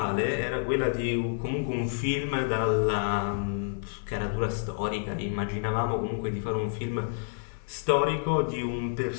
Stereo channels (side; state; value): right; silent; digital silence